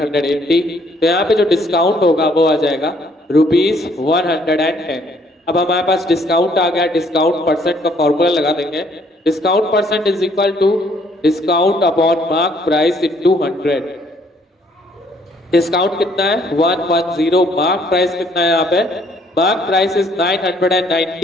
तो यहाँ पे जो डिस्काउंट होगा वो आ जाएगा ₹110। अब हमारे पास डिस्काउंट आ गया, डिस्काउंट परसेंट का फॉर्मूला लगा देंगे। Discount percent is equal to discount upon mark price into 100। Discount कितना है, 110। मार्क प्राइस कितना है यहाँ पे, मार्क प्राइस इज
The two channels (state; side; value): normal; both; correlation 0.64